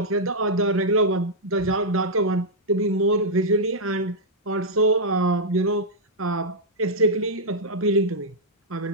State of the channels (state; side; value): normal; both; correlation -0.06